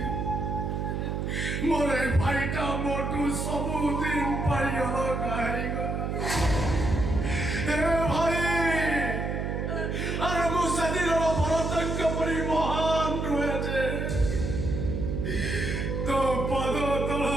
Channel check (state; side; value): noise; right; hum, 2 dB below the sound